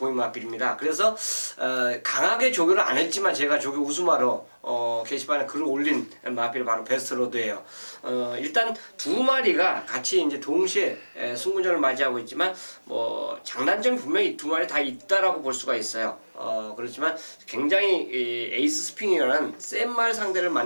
마필입니다. 그래서 강하게 조교를 안 했지만 제가 조교 우수마로 게시판에 글을 올린 마필이 바로 베스트로드예요. 일단 두 마리가 같이 이제 동시에 승군전을 맞이하고 있지만 뭐 장단점이 분명히 두 마리 다 있다라고 볼 수가 있어요. 그렇지만 굉장히 에이스 스핑이라는 센 말 상대를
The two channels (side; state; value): both; inverted; correlation -1.00